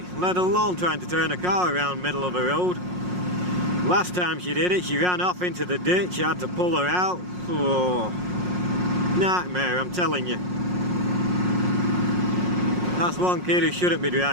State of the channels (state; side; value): late; left; 5.5 ms